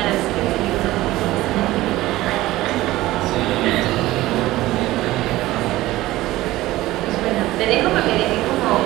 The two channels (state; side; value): quieter; left; 17.1 dB